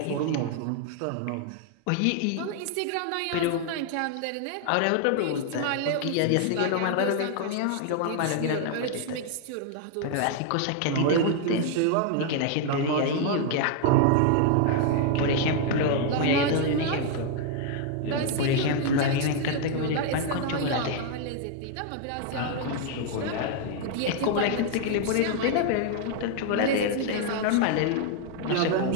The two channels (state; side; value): different; both; correlation 0.00